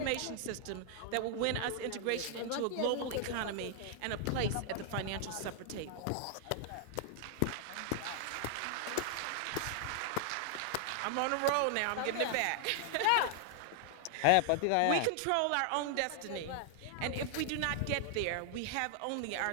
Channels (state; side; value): different; both; correlation 0.00